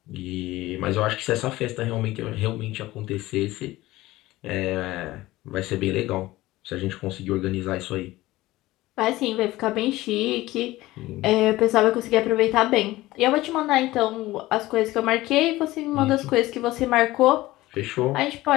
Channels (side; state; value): right; quieter; 17.7 dB